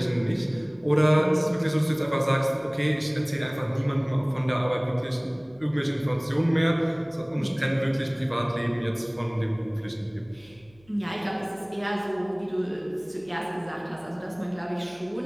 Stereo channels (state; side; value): noise; right; hum, 29 dB below the sound